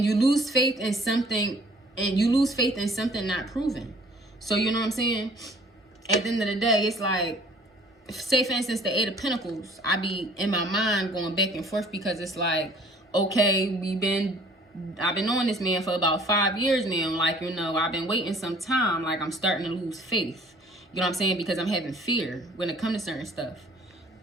you lose faith in something, not proven. So, you know what I'm saying? At the end of the day, it's like, say for instance, the Eight of Pentacles, I be in my mind going back and forth because it's like, okay, I've been knowing this man for about 5 years now. Like, you know, I've been waiting some time. Like, I'm starting to lose faith. You know what I'm saying? Because I'm having fear when it comes to certain stuff.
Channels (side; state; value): both; normal; correlation 0.54